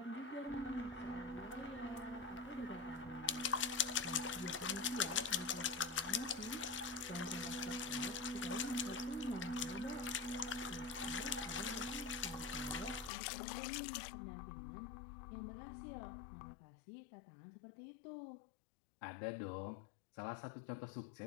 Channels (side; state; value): right; drops out; at 13.1 s